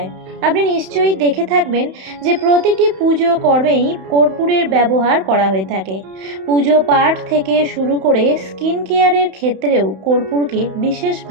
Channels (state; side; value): late; left; 31 ms